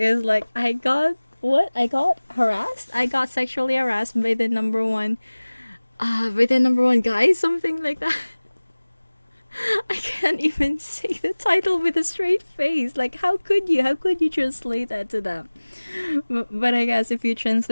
like, I got sexually harassed by the number one guy, something like that. I can't even say the title with a straight face. Like, how could you translate that to them? But I guess if you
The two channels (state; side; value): inverted; both; correlation -1.00